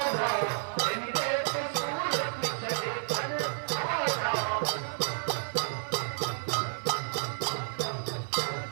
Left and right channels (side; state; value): left; silent; 57 dB below the other